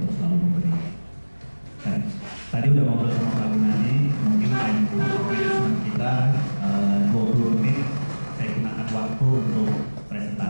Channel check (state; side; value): inverted; both; correlation -1.00